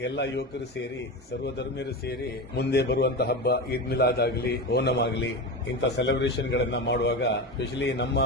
ಎಲ್ಲ ಯುವಕರು ಸೇರಿ ಸರ್ವಧರ್ಮೀಯರು ಸೇರಿ ಮುಂದೆ ಬರುವಂತಹ ಹಬ್ಬ ಈದ್ ಮಿಲಾದ್ ಆಗಲಿ ಓಣಂ ಆಗಲಿ ಇಂಥ ಸೆಲೆಬ್ರೇಷನ್ ಗಳನ್ನ ಮಾಡುವಾಗ ಸ್ಪೆಷಲಿ ನಮ್ಮ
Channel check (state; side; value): normal; both; correlation 0.22